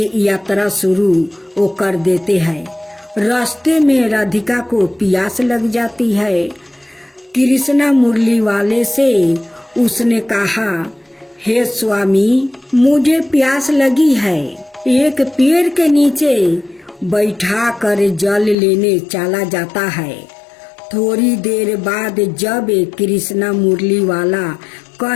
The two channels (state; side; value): drops out; right; at 18.6 s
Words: यात्रा शुरू कर देते हैं। रास्ते में राधिका को प्यास लग जाती है। कृष्णा मुरलीवाले से उसने कहा, हे स्वामी मुझे प्यास लगी है। एक पेड़ के नीचे बैठा कर जल लेने चला जाता है। थोड़ी देर बाद जब कृष्णा मुरलीवाला